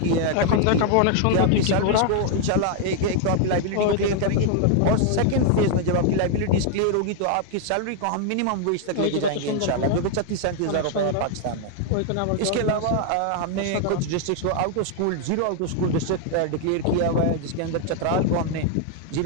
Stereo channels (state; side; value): different; both; correlation 0.00